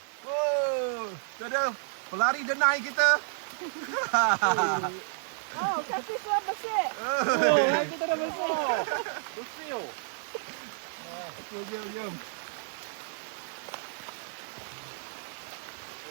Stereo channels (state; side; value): silent; left; digital silence